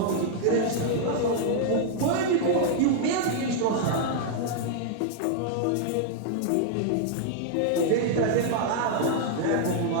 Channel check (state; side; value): different; both; correlation -0.01